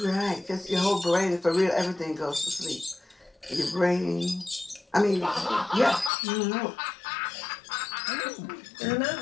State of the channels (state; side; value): drops out; right; at 6.1 s